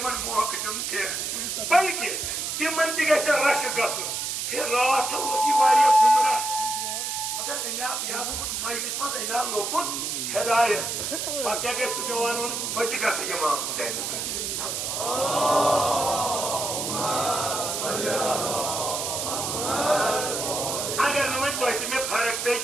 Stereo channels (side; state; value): right; noise; hiss, 2 dB below the sound